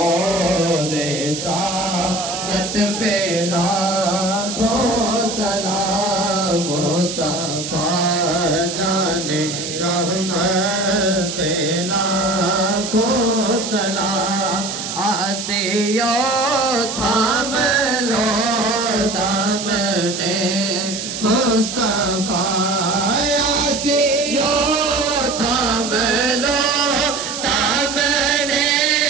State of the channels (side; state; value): right; noise; hiss, 6 dB below the sound